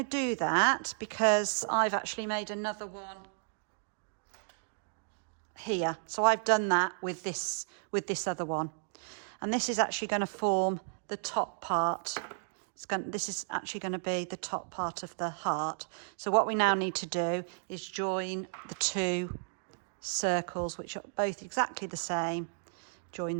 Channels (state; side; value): silent; left; digital silence